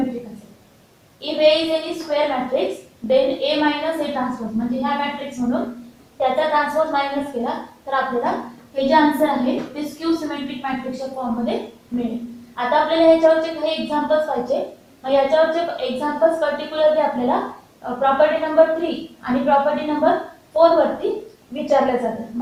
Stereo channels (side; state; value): both; identical; correlation 1.00